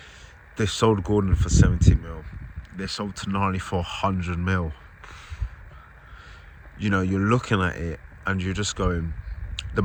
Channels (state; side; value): identical; both; correlation 1.00